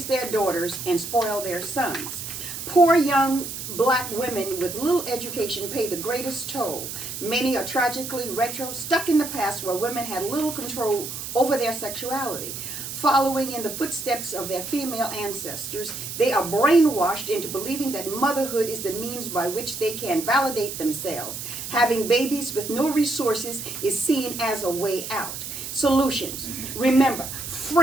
their daughters and spoil their sons. Poor young black women with little education pay the greatest toll. Many are tragically stuck in the past where women had little control over their sexuality. Following in the footsteps of their female ancestors, they are brainwashed into believing that motherhood is the means by which they can validate themselves. Having babies with no resources is seen as a way out. Solutions. Remember,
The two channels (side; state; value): right; noise; hiss, 7 dB below the sound